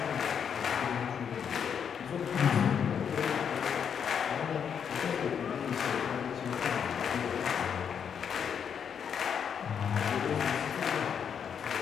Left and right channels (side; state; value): right; quieter; 7.6 dB